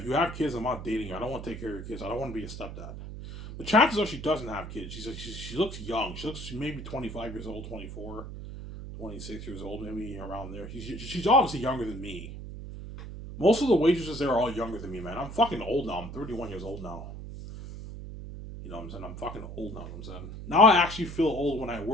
you have kids, I'm not dating you. I don't want to take care of your kids. I don't want to be a stepdad. The chances are she doesn't have kids. She looks young. She looks maybe 25 years old, 24, 26 years old, maybe around there. She's obviously younger than me. Most of the waitresses there are all younger than me, man. I'm fucking old now. I'm 31 years old now. You know what I'm saying? I'm fucking old now, I'm saying. Now I actually feel old when I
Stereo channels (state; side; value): noise; right; hum, 10 dB below the sound